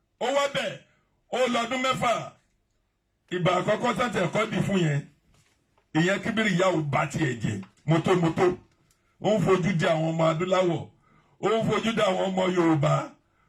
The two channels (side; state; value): both; identical; correlation 1.00